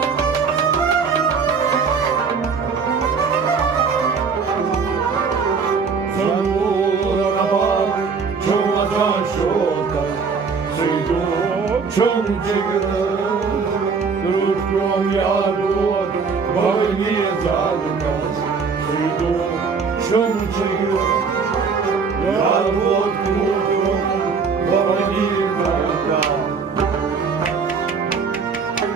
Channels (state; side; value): quieter; left; 5.3 dB